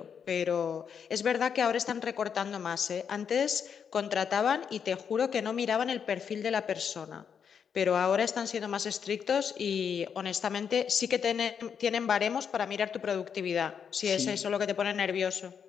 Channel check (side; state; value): right; quieter; 7.2 dB